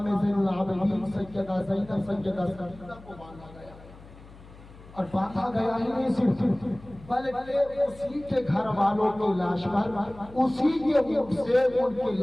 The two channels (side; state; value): left; noise; hum, 20 dB below the sound